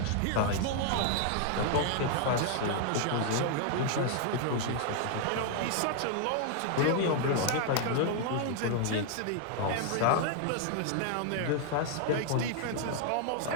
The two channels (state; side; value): different; both; correlation 0.00